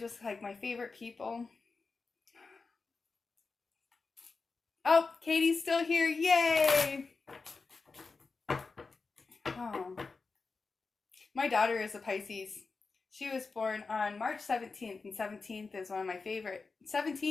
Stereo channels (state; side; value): quieter; right; 4.3 dB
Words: like my favorite people. Oh, Katie's still here. Yay! Oh. My daughter is a Pisces. She was born on March 17th, and 17th is one of my favorite.